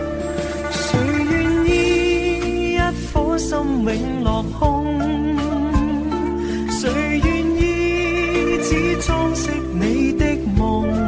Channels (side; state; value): both; identical; correlation 1.00